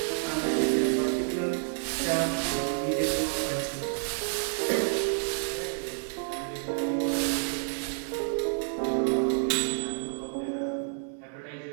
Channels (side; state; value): left; silent; 58 dB below the other